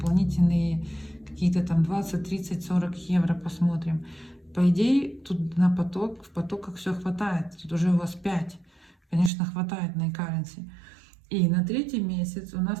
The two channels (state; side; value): drops out; left; at 9.3 s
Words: какие-то там 20, 30, 40 евро, посмотрим. По идее, тут на поток, в потоках все хватает. Тут уже у вас 5. Конечно, хватает на e-currency. И на третий месяц у нас